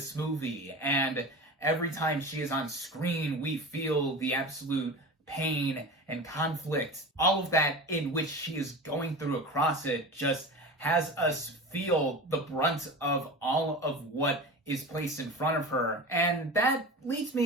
movie, and every time she is on screen, we feel the absolute pain and conflict. All of that in which she is going through across it just has us feel the brunt of all of what is placed in front of her. And that leads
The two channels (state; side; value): normal; both; correlation 0.31